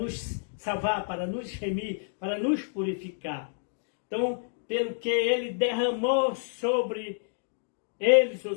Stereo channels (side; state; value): right; silent; digital silence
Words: salvar, para nos remir, para nos purificar. Então, pelo que ele derramou sobre eles, ou